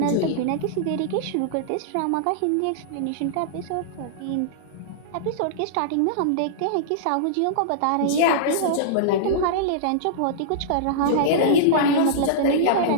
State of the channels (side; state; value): both; different; correlation -0.02